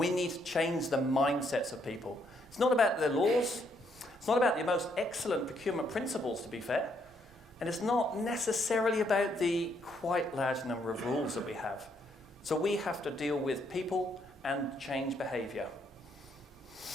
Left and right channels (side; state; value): both; normal; correlation 0.73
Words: need to change the mindsets of people. It's not about the laws, it's not about the most excellent procurement principles, to be fair, and it's not necessarily about the quite large number of rules that we have. So we have to deal with people and change behaviour.